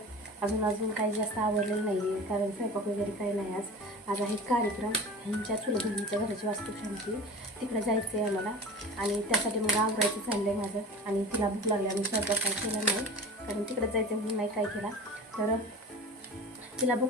अजून काही जास्त आवडलेलं नाही आहे, कारण स्वयंपाक वगैरे काही नाही. आज आहे कार्यक्रम. ह्यांच्या चुलत बहिणीच्या घराची वास्तुशांती, तिकडे जायचं आहे आम्हाला. आणि त्यासाठी मग आवरायचं चाललं आहे माझं. आणि तिला भूक लागली, आम्ही स्वयंपाक काय केला नाही, कारण तिकडे जायचं म्हणून नाही काय केला. तर तिला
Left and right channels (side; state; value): both; normal; correlation 0.36